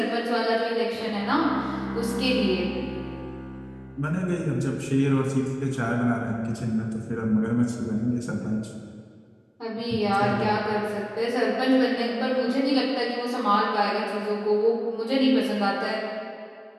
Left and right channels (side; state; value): both; identical; correlation 1.00